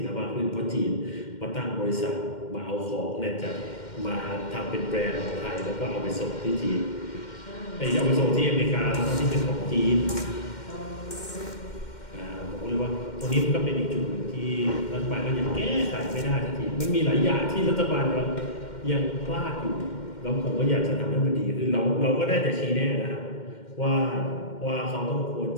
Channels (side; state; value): right; late; 2.1 ms